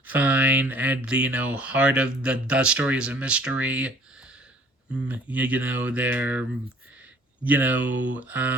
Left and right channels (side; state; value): both; normal; correlation 0.53